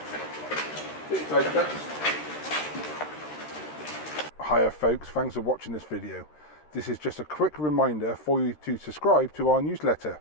Hiya folks, thanks for watching this video. This is just a quick reminder for you to subscribe to our newsletter,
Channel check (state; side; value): late; right; 13 ms